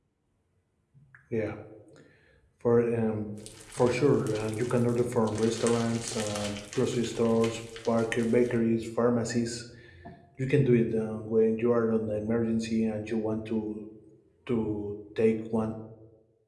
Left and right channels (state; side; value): identical; both; correlation 1.00